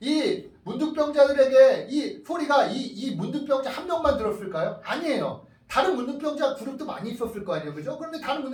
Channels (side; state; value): both; identical; correlation 1.00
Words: 이 문둥병자들에게 이 소리가 이 문둥병자 한 명만 들었을까요? 아니에요. 다른 문둥병자 그룹도 많이 있었을 거 아니에요. 그죠? 그런데 다른